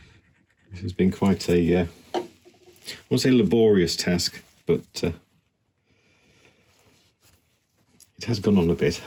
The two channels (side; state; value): both; identical; correlation 1.00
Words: This has been quite a, I won't say laborious task, but it has gone on a bit.